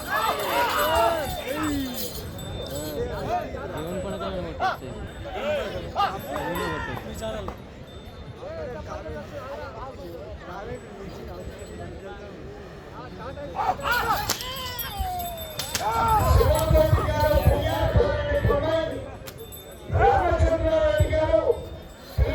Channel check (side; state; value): both; identical; correlation 1.00